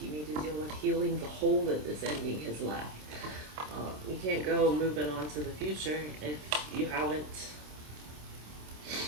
need to deal with healing the hole that this ending has left. You can't go moving on to the future if you haven't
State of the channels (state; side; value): late; left; 27 ms